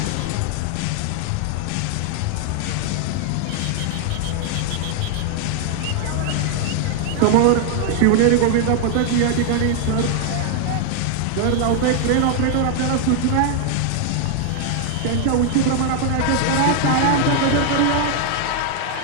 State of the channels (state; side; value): different; both; correlation 0.00